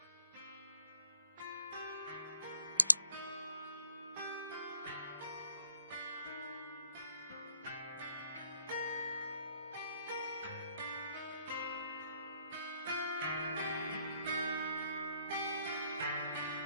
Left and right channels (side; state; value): both; inverted; correlation -0.66